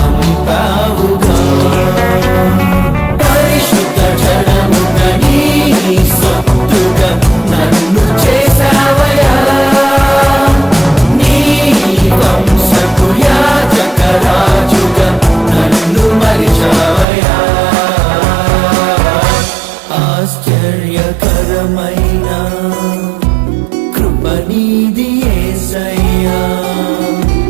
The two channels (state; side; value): drops out; left; at 17.1 s